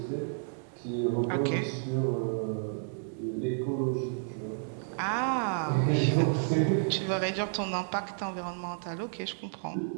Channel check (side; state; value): left; silent; digital silence